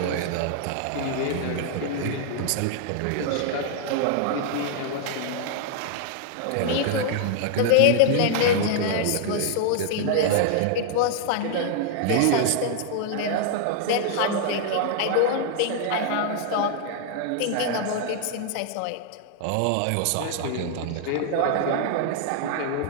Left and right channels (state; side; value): different; both; correlation -0.01